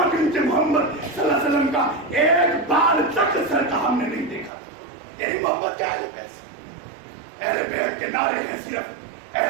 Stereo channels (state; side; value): drops out; left; at 4.5 s